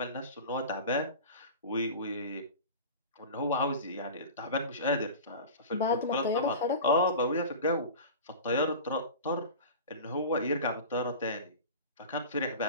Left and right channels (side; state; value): both; inverted; correlation -0.34